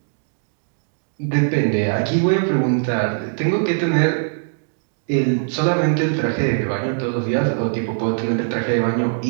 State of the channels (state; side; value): silent; left; digital silence